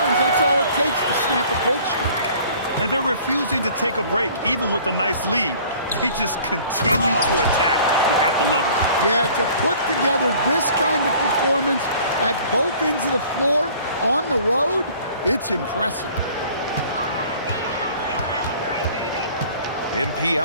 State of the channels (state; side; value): inverted; both; correlation -0.51